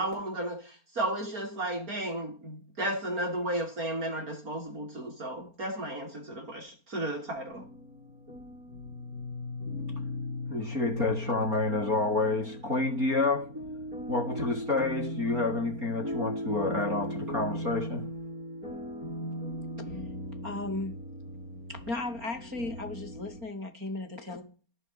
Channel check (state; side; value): late; left; 4.3 ms